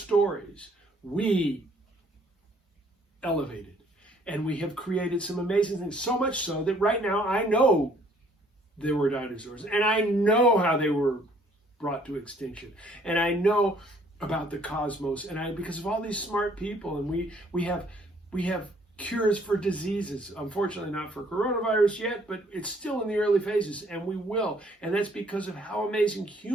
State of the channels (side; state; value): both; normal; correlation 0.62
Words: we elevated. And we have created some amazing things, so much so that right now I know there were dinosaurs, and I know how they were brought to extinction, and I know about the cosmos, and because of all these smart people, and we have cures for diseases. Unfortunately, not for coronavirus yet, but it's still in the early phases, and we will. And that's because of how amazing